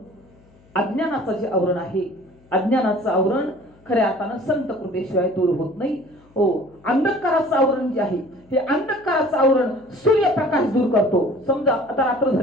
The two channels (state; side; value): noise; left; hum, 29 dB below the sound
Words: अज्ञानाचं जे आवरण आहे अज्ञानाचं आवरण खऱ्या अर्थानं संत कृपेशिवाय दूर होत नाही. हो अंधकाराचं आवरण जे आहे हे अंधकाराचं आवरण सूर्यप्रकाश दूर करतो. समजा आता रात्र